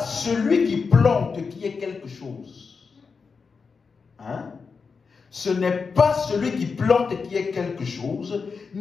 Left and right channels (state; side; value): quieter; right; 5.2 dB